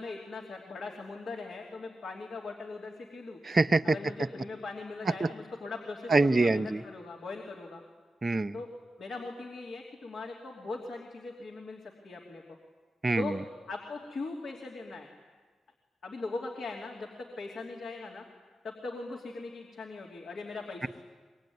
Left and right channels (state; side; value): normal; both; correlation 0.91